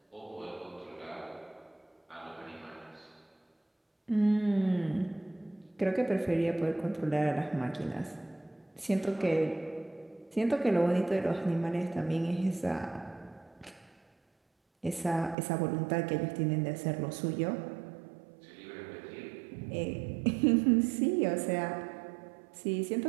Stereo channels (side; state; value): left; drops out; at 15.4 s